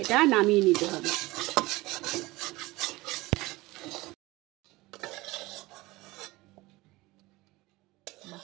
এটা নামিয়ে নিতে হবে।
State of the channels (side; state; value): left; quieter; 20.6 dB